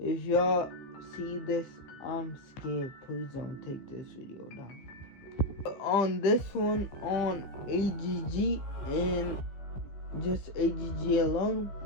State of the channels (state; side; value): late; right; 15 ms